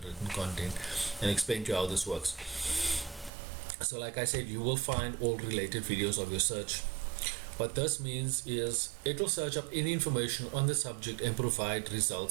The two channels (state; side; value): drops out; left; at 3.3 s